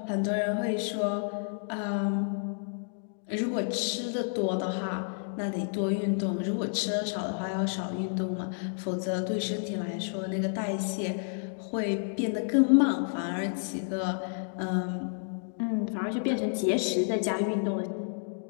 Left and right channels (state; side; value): silent; right; digital silence